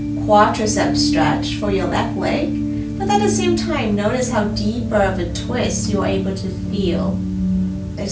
quadricep stretch for your left leg. But at the same time, notice how deeper of a twist you're able to feel.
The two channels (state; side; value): identical; both; correlation 1.00